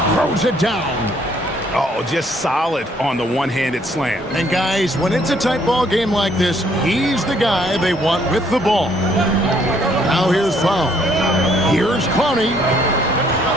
throws it down. Oh, just solid on the one-handed slam. And guys, when it's a tight ball game like this, he's the guy they want with the ball. Now here's foul. Here's Clowney.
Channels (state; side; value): normal; both; correlation 0.66